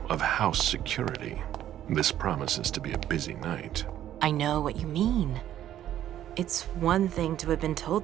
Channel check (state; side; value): quieter; left; 11.7 dB